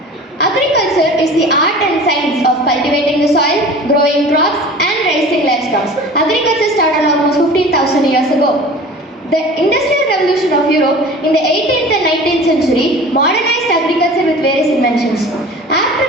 Agriculture is the art and science of cultivating the soil, growing crops and raising livestock. Agriculture started almost 15,000 years ago. The Industrial Revolution of Europe in the 18th and 19th century modernized agriculture with various inventions. After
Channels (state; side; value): normal; both; correlation 0.40